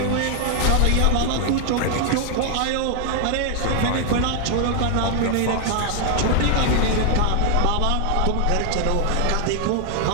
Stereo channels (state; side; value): different; both; correlation 0.00